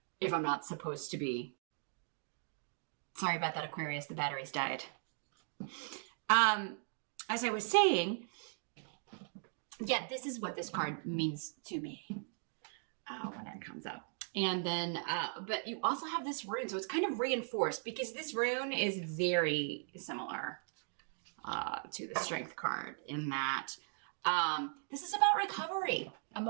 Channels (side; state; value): left; silent; 52 dB below the other